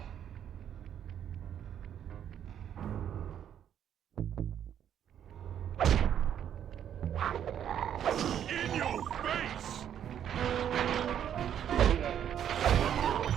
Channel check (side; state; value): left; quieter; 9.6 dB